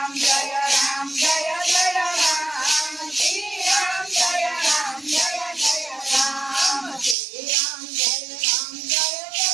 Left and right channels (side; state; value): left; drops out; at 7.2 s